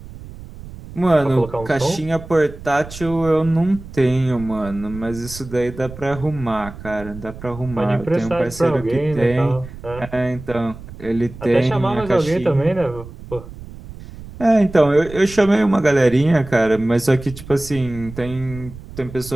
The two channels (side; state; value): right; noise; rumble, 15 dB below the sound